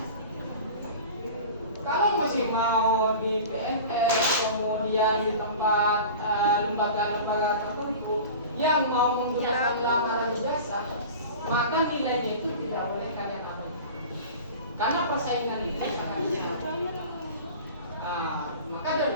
Kalau masih mau di PNS, kemudian di tempat lembaga-lembaga tertentu yang mau menggunakan lamaran ijazah, maka nilainya itu tidak boleh kalian ambil. Karena persaingan itu sangat besar. Maka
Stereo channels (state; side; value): inverted; both; correlation -0.37